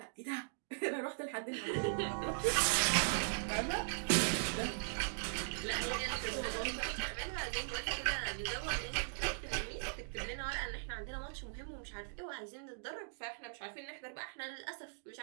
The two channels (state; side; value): silent; left; digital silence